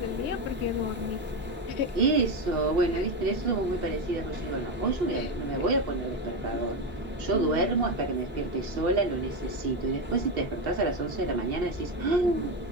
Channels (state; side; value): normal; both; correlation 0.12